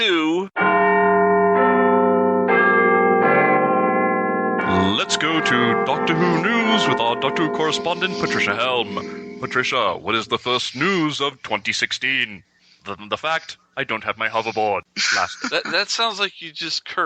Let's go to Doctor Who News with our Doctor Who correspondent, Patricia-Helm. Patricia, what is the first news of 2016? The fact, I don't have my hoverboard. That sounds like you just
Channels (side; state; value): both; identical; correlation 1.00